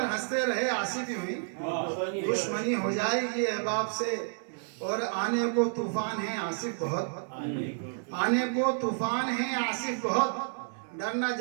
हंसते रहे आसिफ यूं ही, दुश्मनी हो जाएगी अहबाब से। और आने को तूफान है आसिफ बहुत, आने को तूफान है आसिफ बहुत, डर न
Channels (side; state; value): left; silent; 58 dB below the other